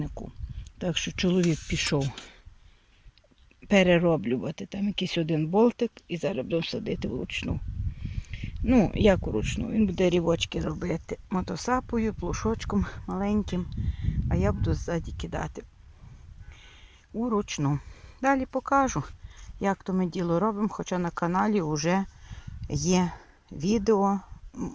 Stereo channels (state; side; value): identical; both; correlation 1.00